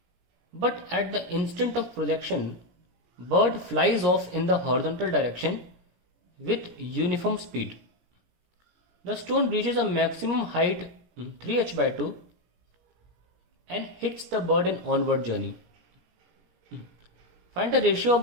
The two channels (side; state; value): left; late; 17 ms